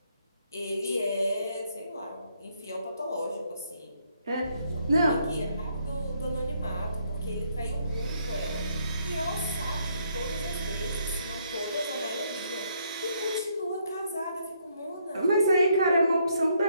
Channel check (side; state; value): both; inverted; correlation -0.71